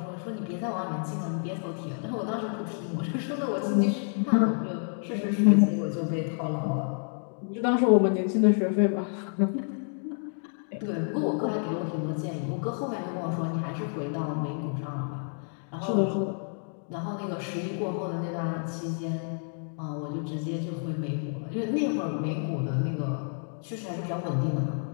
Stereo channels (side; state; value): right; silent; 58 dB below the other